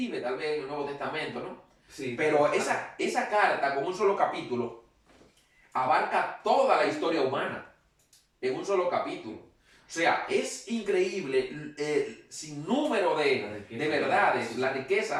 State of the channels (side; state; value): both; identical; correlation 1.00